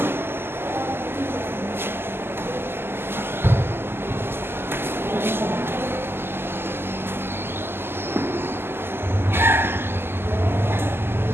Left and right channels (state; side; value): late; left; 0.11 ms